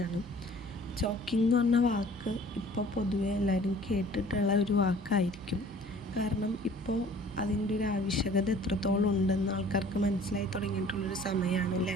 ചോക്കിംഗ് എന്ന് പറഞ്ഞ വാക്ക് ഇപ്പോൾ പൊതുവെ എല്ലാവരും കേട്ടിട്ടുള്ള ഒരു വാക്കായിരിക്കും. കാരണം ഇപ്പോൾ അതിൻ്റെ ഒരു ആവശ്യകത എത്രത്തോളം ഉണ്ടെന്ന് ആൾക്കാർക്ക് മനസ്സിലായി തുടങ്ങിയിട്ടുള്ളൊരു സമയമാണല്ലേ.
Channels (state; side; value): normal; both; correlation 0.51